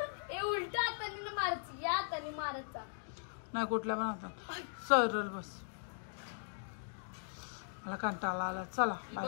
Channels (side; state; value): right; silent; digital silence